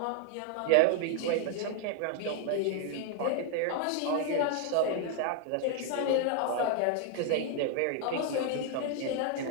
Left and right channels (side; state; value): both; different; correlation 0.00